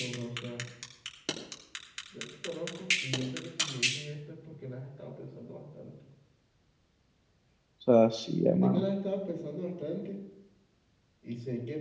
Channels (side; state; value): both; identical; correlation 1.00